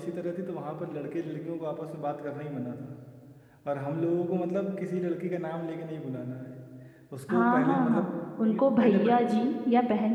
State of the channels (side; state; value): both; identical; correlation 1.00